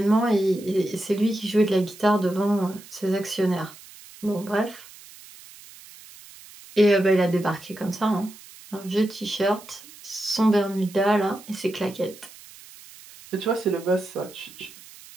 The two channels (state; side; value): noise; right; hiss, 20 dB below the sound